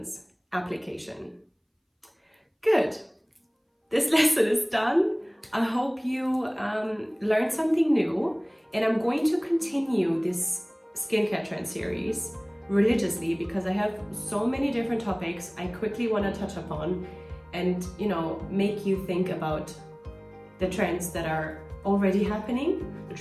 Application. Good. This lesson is done. I hope you learned something new, and I'm going to continue this skincare trend series religiously because I have so many different topics I quickly want to touch upon and make you think about the trends that are already happening, the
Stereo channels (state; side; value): identical; both; correlation 1.00